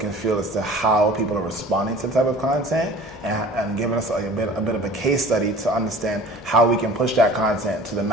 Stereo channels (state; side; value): noise; left; hum, 21 dB below the sound